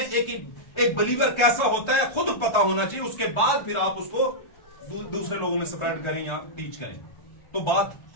एक बिलीवर कैसा होता है खुद पता होना चाहिए। उसके बाद फिर आप उसको दूसरे लोगों में स्प्रेड करें या टीच करें, तो बात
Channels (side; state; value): right; late; 1.3 ms